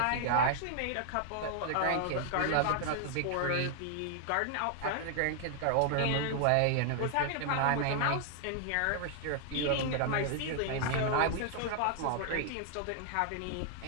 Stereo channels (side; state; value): both; different; correlation 0.00